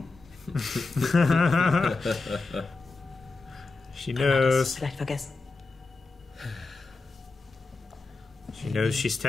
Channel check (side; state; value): right; quieter; 3.7 dB